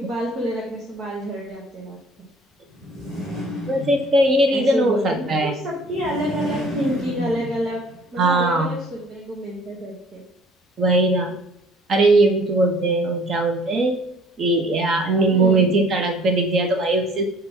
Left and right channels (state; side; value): normal; both; correlation 0.54